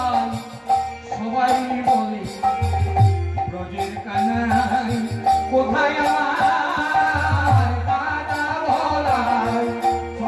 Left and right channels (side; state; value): both; identical; correlation 1.00